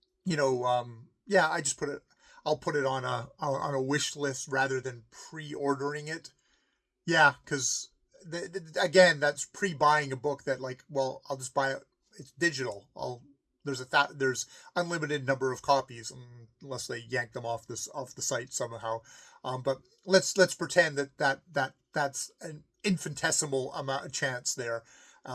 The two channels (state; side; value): identical; both; correlation 1.00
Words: just I'll put it on a wish list rather than pre-ordering it. Yeah, because again, that's pre-buying a book that like, well, I'll just buy it. It's digital. There's unlimited number of copies unless they yank them off the site somehow. But let's pretend that's an infinitesimal amount of chance there.